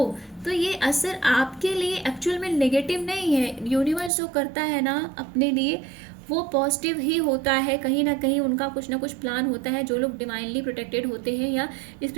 तो ये असर आपके लिए एक्चुअल में नेगेटिव नहीं है। यूनिवर्स जो करता है ना अपने लिए, वो पॉजिटिव ही होता है। कहीं ना कहीं उनका कुछ ना कुछ प्लान होता है। जो लोग डिवाइनली प्रोटेक्टेड होते हैं या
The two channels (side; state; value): left; drops out; at 4.1 s